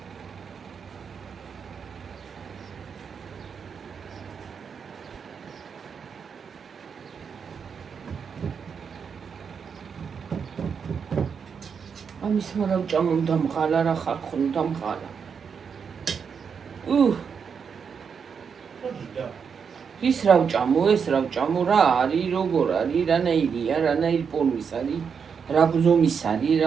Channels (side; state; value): left; quieter; 6.4 dB